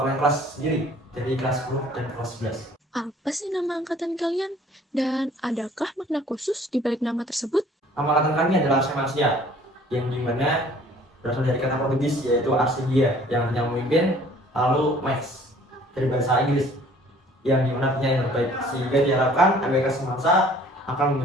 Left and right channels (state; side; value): normal; both; correlation 0.54